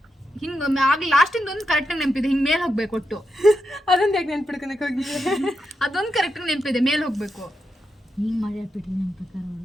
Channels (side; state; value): both; normal; correlation 0.85